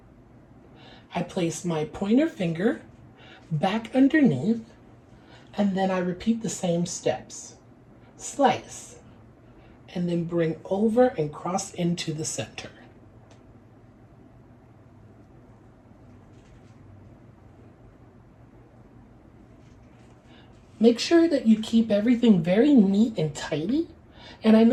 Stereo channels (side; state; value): both; identical; correlation 1.00